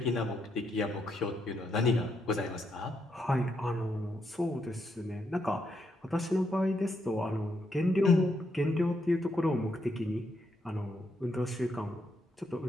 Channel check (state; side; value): normal; both; correlation 0.79